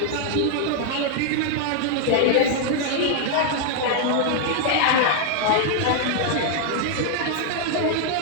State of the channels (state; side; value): different; both; correlation 0.00